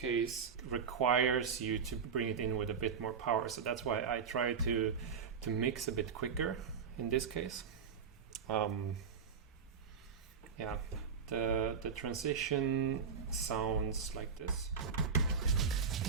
it requires you to bring it in with a bit more power. So that's why I try to mix a bit quicker in this case. Yeah, the transition sounds like this.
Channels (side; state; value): left; quieter; 6.3 dB